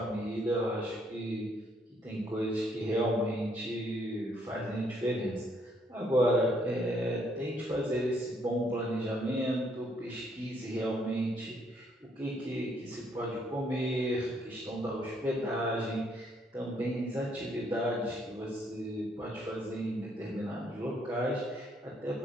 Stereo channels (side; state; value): both; normal; correlation 0.70